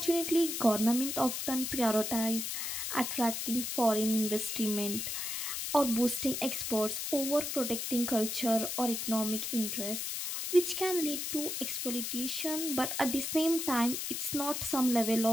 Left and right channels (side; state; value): left; noise; hiss, 3 dB below the sound